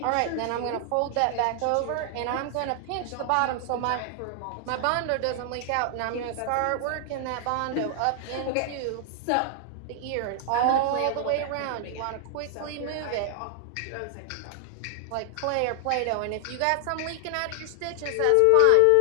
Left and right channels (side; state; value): both; different; correlation 0.00